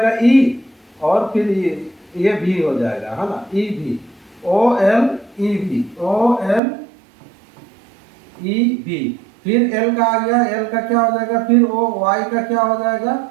E और फिर ये भी हो जाएगा, है ना, EV, OLEV, OLEV। फिर L का आ गया, L का क्या हो जाएगा, फिर O, Y का क्या हो जाएगा,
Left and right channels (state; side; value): drops out; left; at 6.6 s